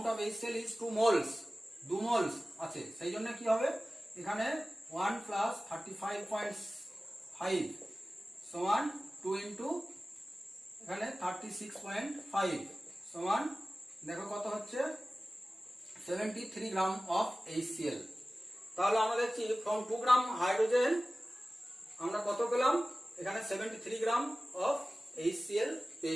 of HCl is 2 moles, 2 moles আছে, সেই জন্য কি হবে এখানে 1 plus 35.5 সমান 2 into এখানে 36.5 সমান, দেখো কত হচ্ছে 73 গ্রাম অফ HCl। তাহলে আমরা দেখছি ফ্রম 2 গ্রাম হাইড্রোজেন আমরা কত পেলাম? এখানে 73 গ্রাম অফ HCl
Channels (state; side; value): normal; both; correlation 0.96